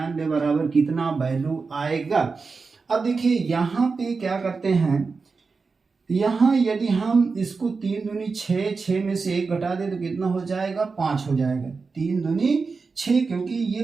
बराबर कितना वैल्यू आएगा। अब देखिए यहाँ पे क्या करते हैं, यहाँ यदि हम इसको 3 दूनी 6, 6 में से 1 घटा दे तो कितना हो जाएगा 5 हो जाएगा। 3 दूनी 6, क्योंकि ये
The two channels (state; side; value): quieter; left; 4.6 dB